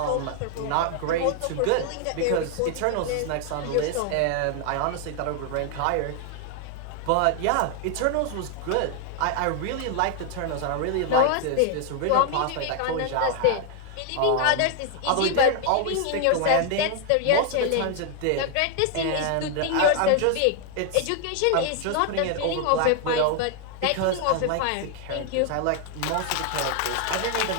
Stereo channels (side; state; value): both; different; correlation 0.00